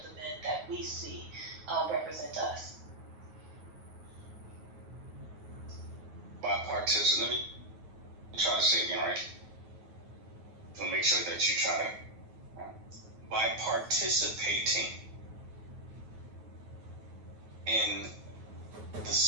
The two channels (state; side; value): late; left; 9.3 ms